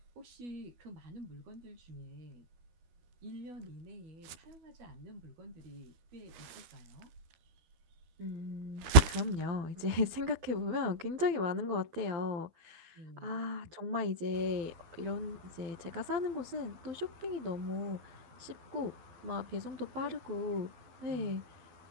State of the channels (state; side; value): late; left; 12 ms